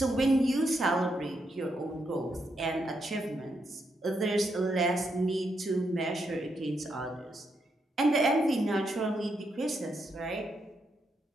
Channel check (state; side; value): normal; both; correlation 0.80